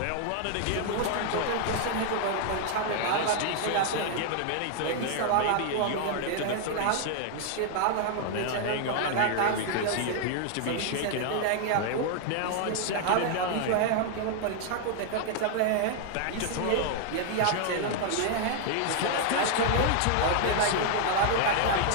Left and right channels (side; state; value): both; different; correlation 0.00